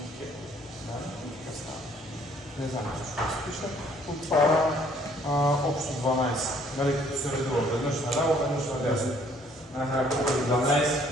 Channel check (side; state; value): both; normal; correlation 0.62